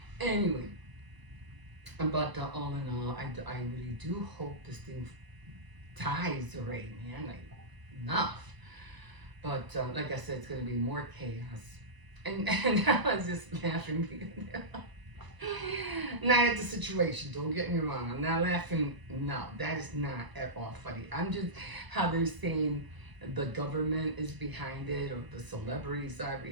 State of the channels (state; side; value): late; left; 1.0 ms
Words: Anyway, but all in all, I really do hope this thing dies already, man. Like, enough. But like I said, it's going to be more chaos. And I was just laughing. Not at the situation, don't get me wrong. I'm not laughing. No, that is not at all funny. I'm just how they're saying the government is behind it, or the celebrities are